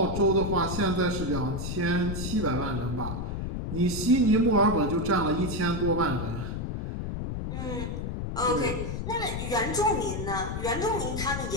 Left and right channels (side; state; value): left; noise; rumble, 4 dB below the sound